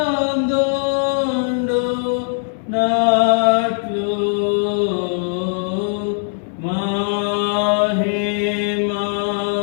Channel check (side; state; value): right; silent; digital silence